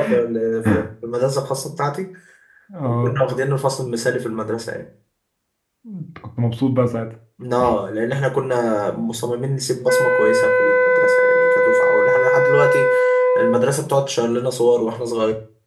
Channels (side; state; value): both; identical; correlation 1.00